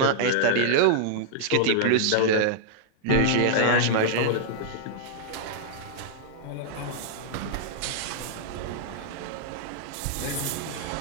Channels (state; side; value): different; both; correlation -0.01